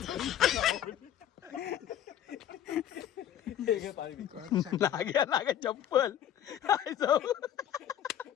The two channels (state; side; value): quieter; right; 10.8 dB